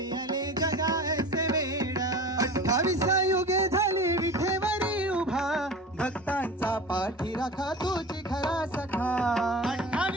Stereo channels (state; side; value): normal; both; correlation 0.35